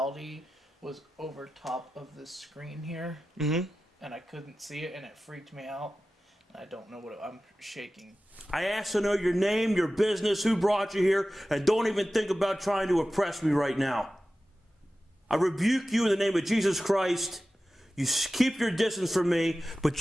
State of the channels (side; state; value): both; normal; correlation 0.94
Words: was over top of this screen here. Mm-hmm. And I couldn't see it, and it freaked me out. And I don't know I'm shaking. I asked to know your name, your business, who brought you here, and don't even think about trying to oppress me right now. I rebuke you in the name of Jesus Christ. You keep your distance from me, but